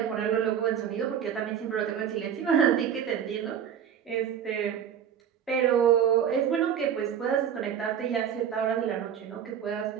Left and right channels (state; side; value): quieter; left; 8.7 dB